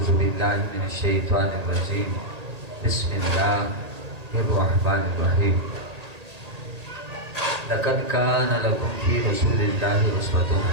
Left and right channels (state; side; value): late; left; 1.8 ms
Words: بالله من الشيطان الرجيم بسم الله الرحمن الرحيم لقد كان لكم في رسول الله أسوة